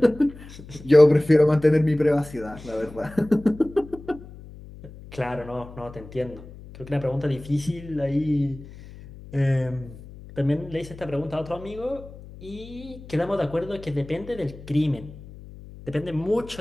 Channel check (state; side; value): noise; left; hum, 17 dB below the sound